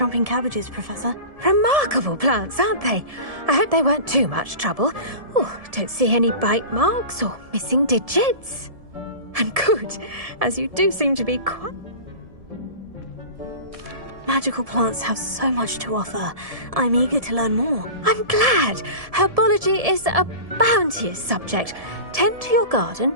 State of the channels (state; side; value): late; left; 1.7 ms